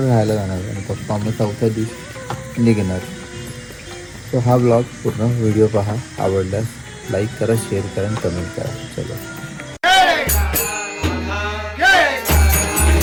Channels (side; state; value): both; identical; correlation 1.00